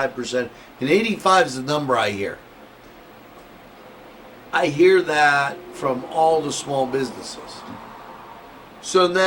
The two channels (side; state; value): both; identical; correlation 1.00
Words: And 85 is the number I hear. I hear that from all the small businesses. So